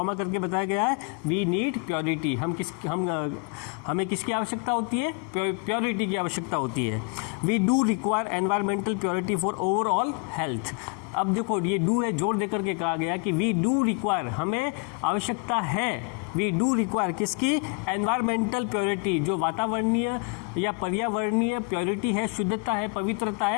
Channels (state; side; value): quieter; right; 33.7 dB